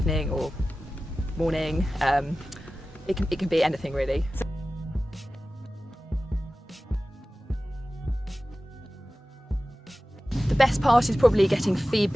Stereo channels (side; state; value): both; normal; correlation 0.96